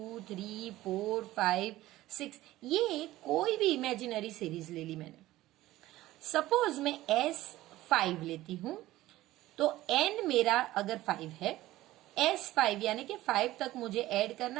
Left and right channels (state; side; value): quieter; left; 16.2 dB